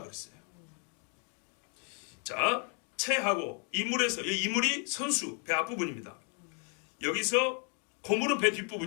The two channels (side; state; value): right; quieter; 38.9 dB